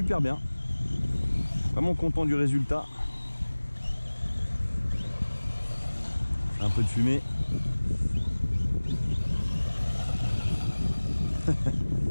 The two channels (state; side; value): inverted; both; correlation -1.00